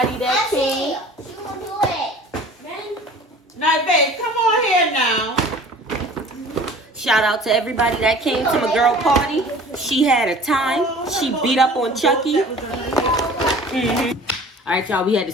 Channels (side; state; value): both; normal; correlation 0.45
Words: that came. Now, babe, come on here now. Shout out to everybody that came to my girl party. She had a time. She beat up on Chucky. All right, y'all, we had to